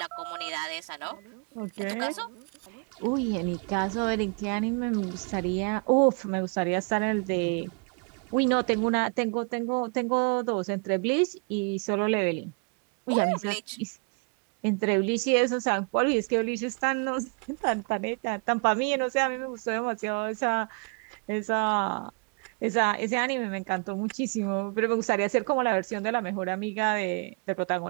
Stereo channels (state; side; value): quieter; left; 36.9 dB